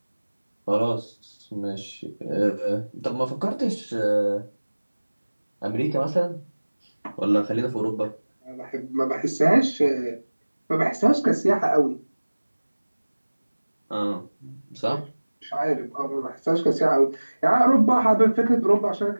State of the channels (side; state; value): both; inverted; correlation -1.00